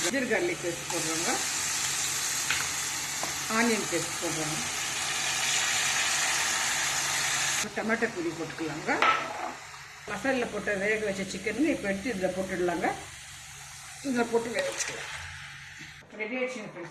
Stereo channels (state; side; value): identical; both; correlation 1.00